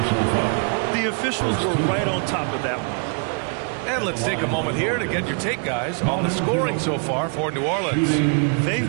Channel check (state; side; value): quieter; left; 39.5 dB